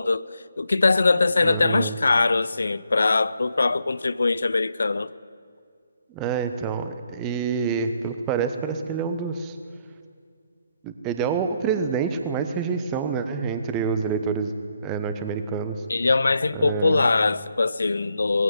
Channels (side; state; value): both; inverted; correlation -0.76